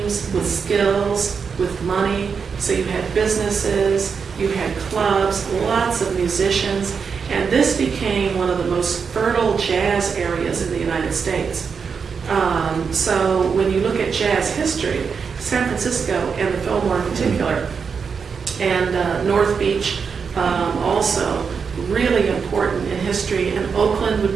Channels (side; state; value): left; quieter; 5.9 dB